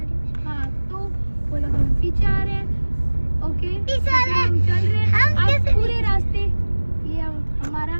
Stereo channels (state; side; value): inverted; both; correlation -1.00